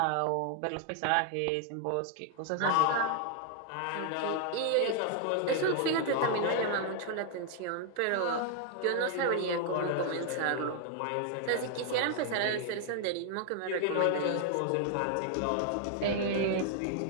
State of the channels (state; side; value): different; both; correlation 0.00